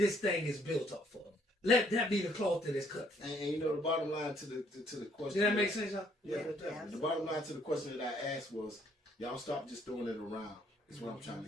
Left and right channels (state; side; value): normal; both; correlation 0.66